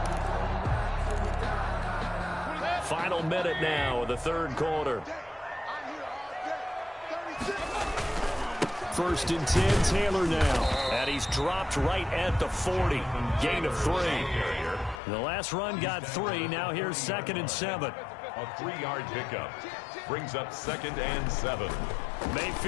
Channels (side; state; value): right; drops out; at 15.0 s